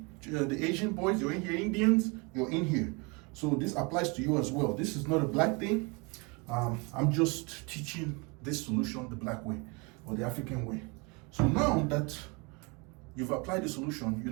The Asian boys, you're in here. Indians, you're in here. So this applies to you as well. This is not a black thing. I'm just teaching this solution the black way or the African way. So now that you've applied the solution, you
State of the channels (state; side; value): quieter; left; 29.6 dB